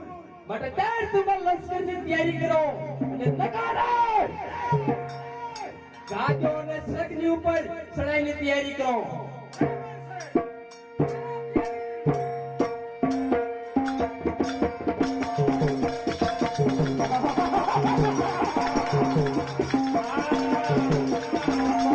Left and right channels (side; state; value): both; identical; correlation 1.00